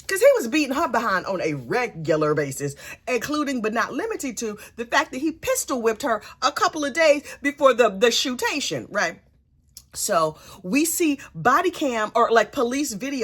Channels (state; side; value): identical; both; correlation 1.00